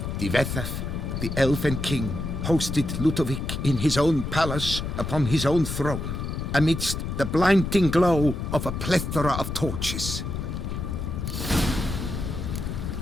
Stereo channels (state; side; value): noise; left; rumble, 4 dB below the sound